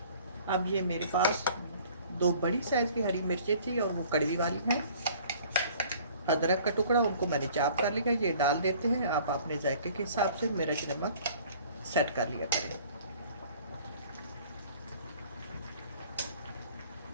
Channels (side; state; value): both; inverted; correlation -0.52